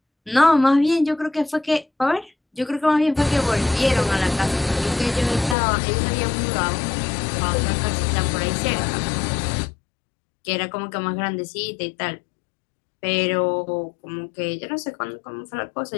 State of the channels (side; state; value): right; drops out; at 5.6 s